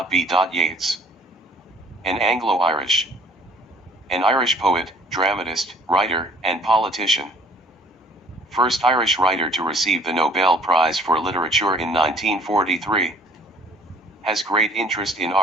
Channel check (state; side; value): normal; both; correlation 0.56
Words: Yeats. An Anglo-Irish. An Irish poet, dramatist, writer, and politician. First Irish writer to receive the Nobel Prize for Literature in 1943. Has great interest in